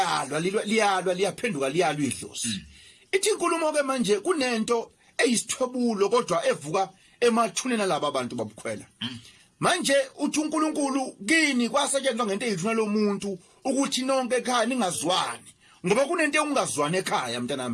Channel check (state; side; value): identical; both; correlation 1.00